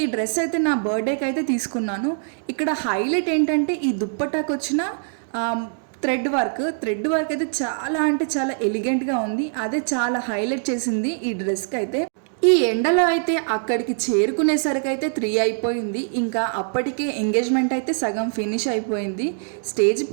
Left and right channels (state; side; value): silent; left; digital silence